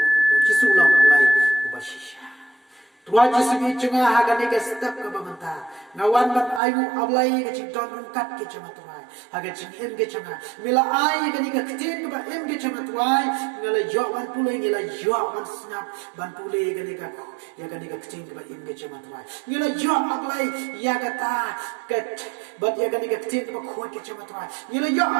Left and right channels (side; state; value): left; drops out; at 6.6 s